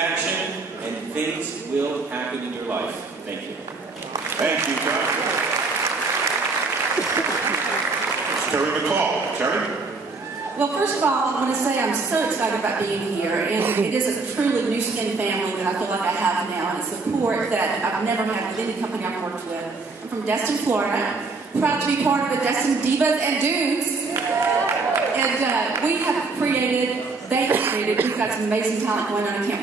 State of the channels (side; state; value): left; quieter; 3.9 dB